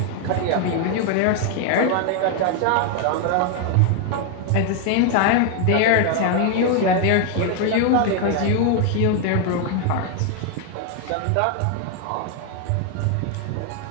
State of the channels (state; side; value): different; both; correlation 0.01